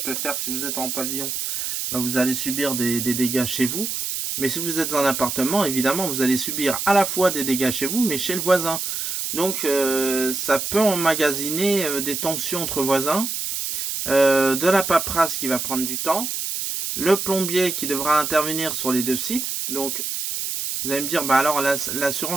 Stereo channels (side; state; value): right; noise; hiss, 3 dB below the sound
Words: faire si vous êtes en pavillon, bah, vous allez subir des dégâts chez vous. Mais si vous êtes en appartement, évidemment, vous allez subir à la fois des dégâts chez vous, mais chez le voisin. Donc ça peut emmagasiner des tensions entre voisins, de la paperasse qui va prendre du temps, le plombier qui devra intervenir sur les deux sites. Donc vous allez me dire, bah alors